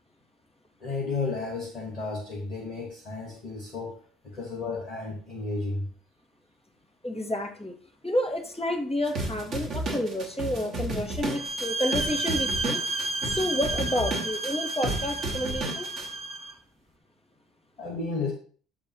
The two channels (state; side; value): normal; both; correlation 0.65